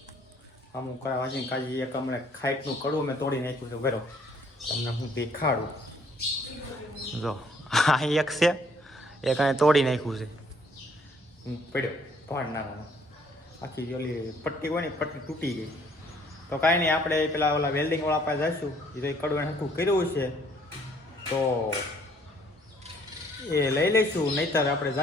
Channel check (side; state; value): both; normal; correlation 0.62